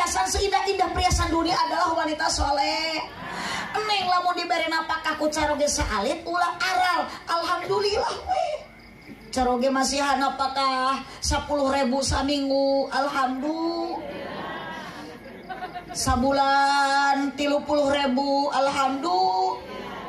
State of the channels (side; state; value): both; identical; correlation 1.00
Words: seindah-indah perhiasan dunia adalah wanita soleh. Neng lamun dibere napakah ku caroge saalit ulah aral. Alhamdulillah we. Caroge masihan napakah 10.000 saminggu. Alhamdulillah. Sabulan 30.000. Alhamdulillah.